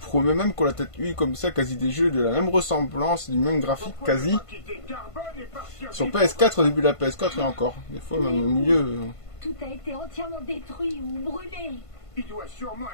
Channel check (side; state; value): right; late; 1.5 ms